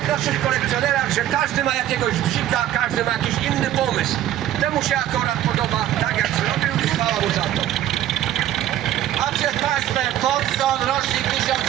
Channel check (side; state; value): left; quieter; 12.3 dB